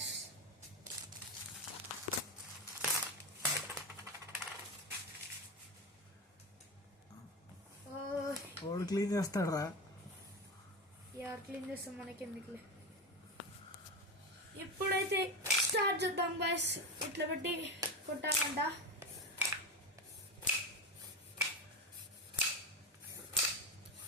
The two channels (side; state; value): both; normal; correlation 0.20